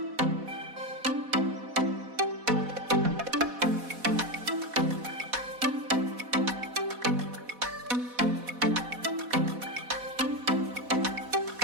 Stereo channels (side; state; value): left; late; 4.1 ms